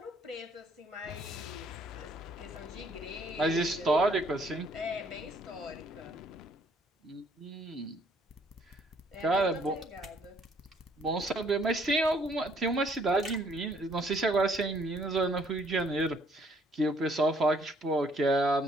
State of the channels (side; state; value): both; normal; correlation 0.64